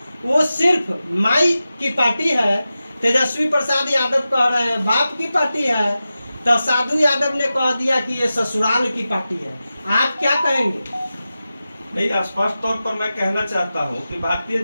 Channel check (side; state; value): both; inverted; correlation -0.93